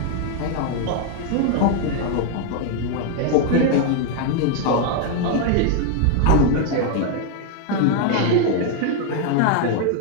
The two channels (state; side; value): different; both; correlation 0.01